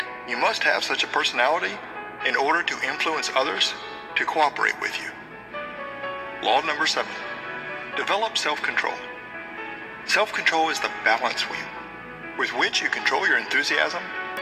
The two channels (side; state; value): both; identical; correlation 1.00